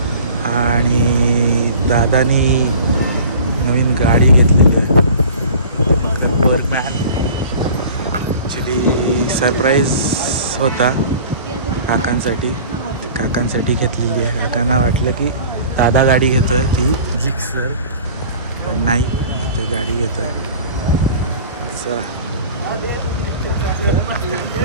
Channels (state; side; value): inverted; both; correlation -0.43